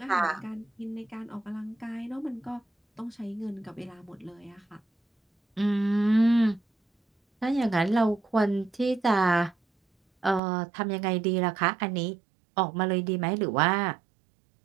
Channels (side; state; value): left; drops out; at 10.4 s